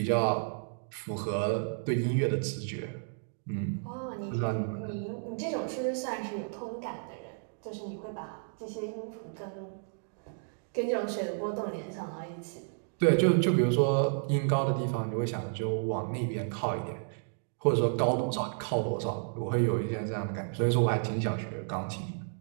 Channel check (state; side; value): silent; left; digital silence